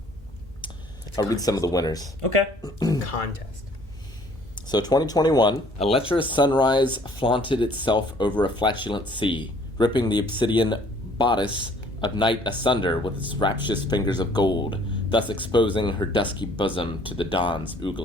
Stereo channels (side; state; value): both; normal; correlation 0.57